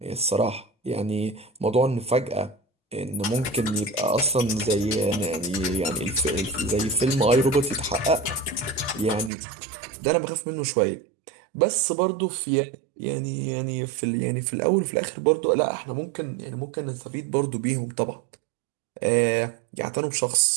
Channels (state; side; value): drops out; left; at 9.3 s